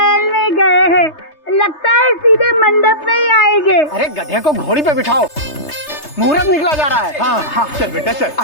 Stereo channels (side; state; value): right; late; 3.3 ms